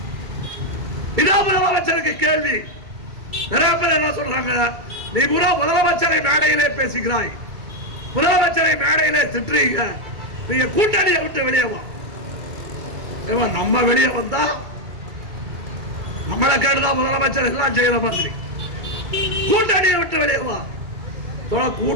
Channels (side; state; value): left; late; 2.3 ms